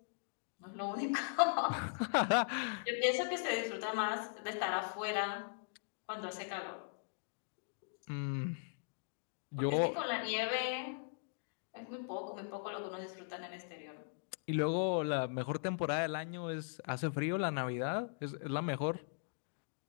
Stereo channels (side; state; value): right; silent; digital silence